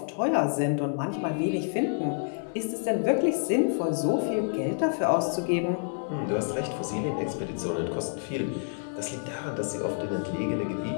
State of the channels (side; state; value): right; silent; digital silence